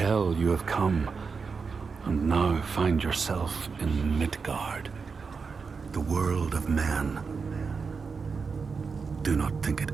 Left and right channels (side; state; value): left; quieter; 5.2 dB